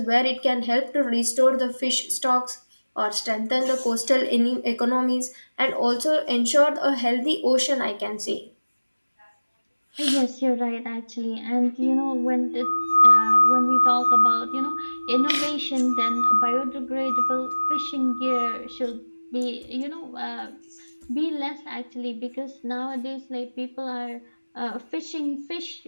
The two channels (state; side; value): inverted; both; correlation -1.00